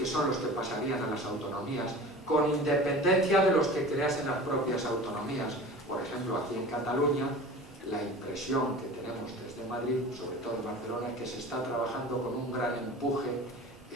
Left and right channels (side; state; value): both; normal; correlation 0.38